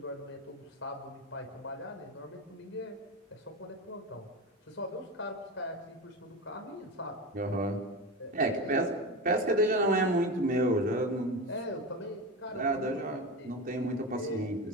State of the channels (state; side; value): normal; both; correlation 0.23